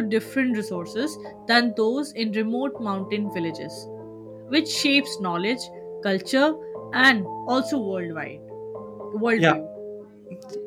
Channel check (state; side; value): identical; both; correlation 1.00